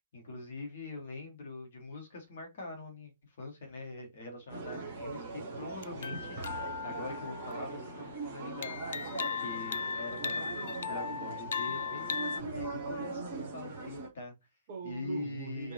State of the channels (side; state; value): both; inverted; correlation -0.61